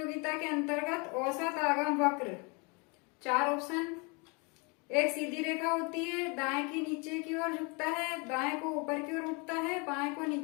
के अंतर्गत औसत आगम वक्र, 4 ऑप्शन, एक सीधी रेखा होती है, दाएं की नीचे की ओर झुकता है, दाएं को ऊपर की ओर उठता है, बाएं को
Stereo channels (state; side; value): quieter; right; 31.2 dB